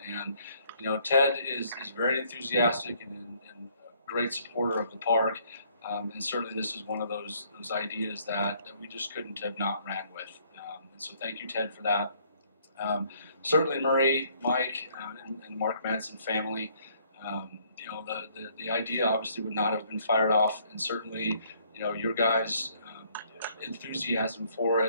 And you know, Ted is very enthusiastic and a great supporter of the park, and certainly this is one of those ideas that we just couldn't have not ran with. And so thank you, Ted, for that. Certainly Marie, Mike, and Mark Madsen family. You know, the idea obviously would not have been fired off, and certainly, you know, your guys' enthusiasm for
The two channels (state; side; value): inverted; both; correlation -0.64